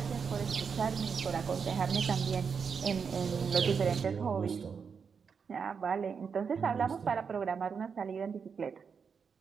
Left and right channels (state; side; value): quieter; left; 6.1 dB